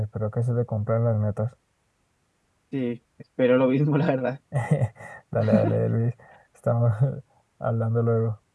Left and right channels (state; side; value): identical; both; correlation 1.00